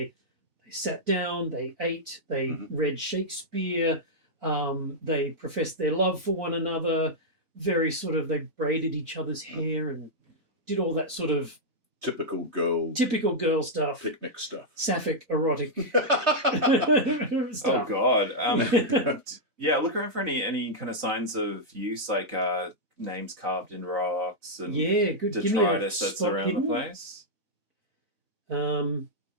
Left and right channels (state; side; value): late; left; 4.0 ms